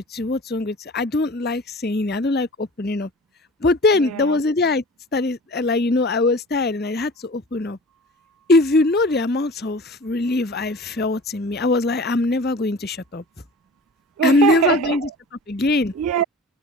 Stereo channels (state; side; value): normal; both; correlation 0.40